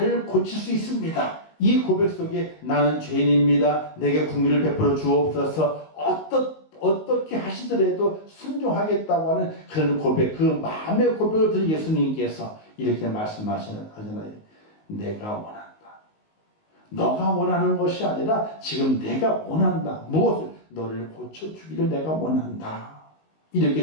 고칠 수 있습니다. 이 고백 속에 나는 죄인입니다. 내게 긍휼을 베풀어 주옵소서. 어떻게 하시더라도 순종하겠다고 하는 그런 고백, 그 마음의 고백을 들은 예수님께서 이렇게 말씀하시잖아요. 내가 원한다. 너가 원하는 것이 아니라 지금 내가 원한다. 무엇을? 너를 고쳐주기를 내가 원한다.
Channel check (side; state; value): right; late; 19 ms